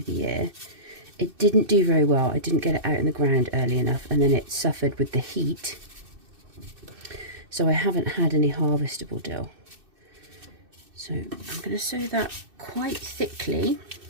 the year. It didn't do very well. I didn't get it out in the ground early enough, and then it suffered with the heat. So I haven't had any harvestable dill. So I'm going to sow that quite thickly.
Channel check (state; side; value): late; left; 2.6 ms